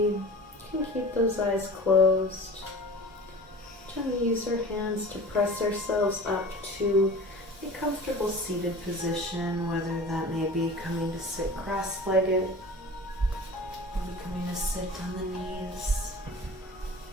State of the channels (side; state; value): both; normal; correlation 0.39